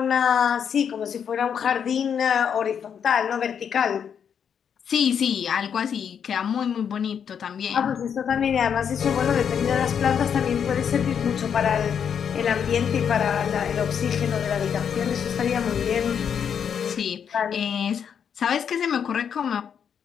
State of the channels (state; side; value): quieter; right; 7.7 dB